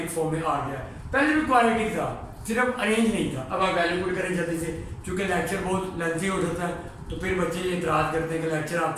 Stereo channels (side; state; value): both; identical; correlation 1.00